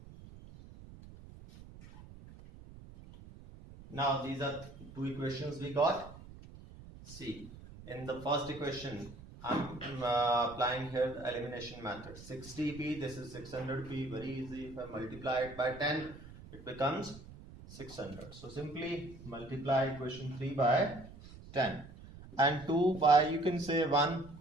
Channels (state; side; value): noise; right; rumble, 17 dB below the sound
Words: Now these are two equations we got. See, in the first equation, I'm applying here the elimination method. 60p, this is 600p, very easy. If I multiply it by 10, it becomes 600. So simply multiply equation 3 by 10 and 2 by, you can say 1